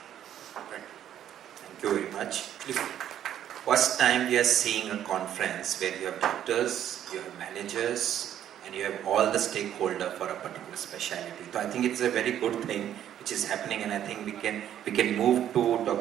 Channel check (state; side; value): quieter; left; 10.7 dB